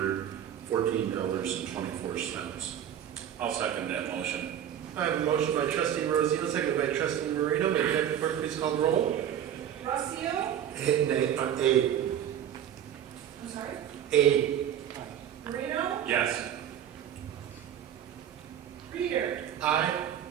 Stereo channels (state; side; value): quieter; left; 10.0 dB